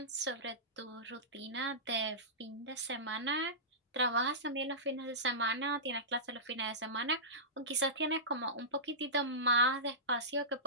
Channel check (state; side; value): normal; both; correlation -0.19